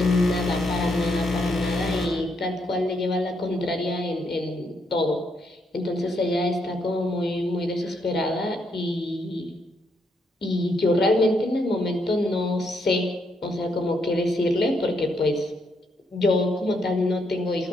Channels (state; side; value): normal; both; correlation 0.76